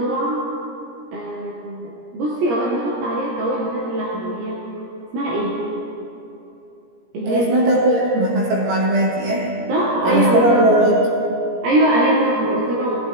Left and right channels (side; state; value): left; late; 17 ms